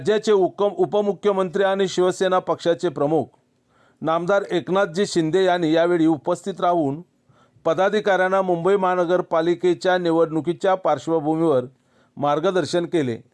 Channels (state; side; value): identical; both; correlation 1.00